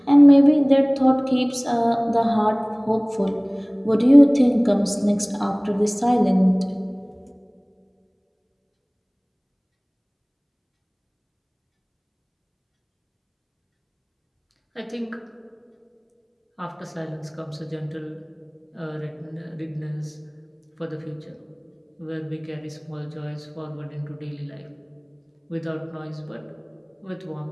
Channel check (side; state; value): both; identical; correlation 1.00